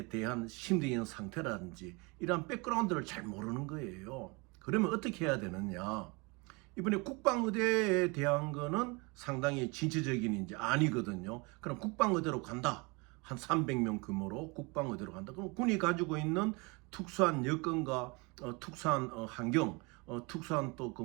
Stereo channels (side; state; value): left; quieter; 28.1 dB